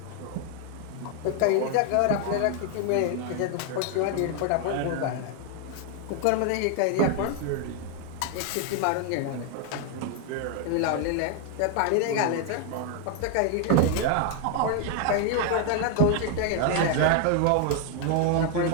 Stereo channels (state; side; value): different; both; correlation 0.00